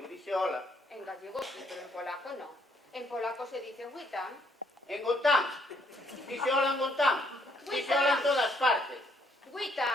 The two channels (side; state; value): both; normal; correlation 0.68